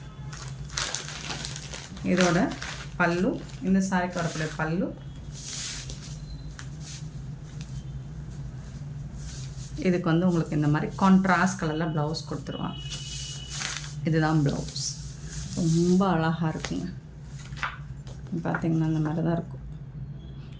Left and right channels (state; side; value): identical; both; correlation 1.00